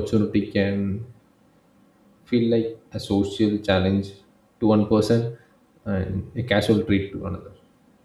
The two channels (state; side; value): identical; both; correlation 1.00